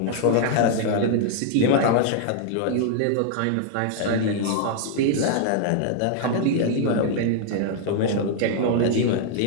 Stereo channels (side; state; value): both; different; correlation -0.01